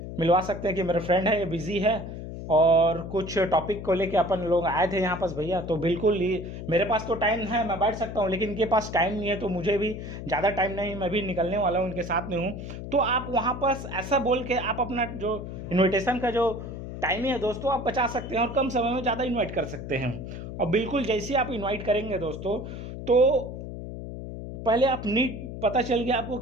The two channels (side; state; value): left; noise; hum, 9 dB below the sound